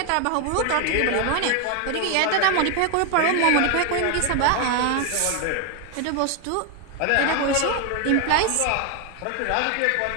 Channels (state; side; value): different; both; correlation 0.01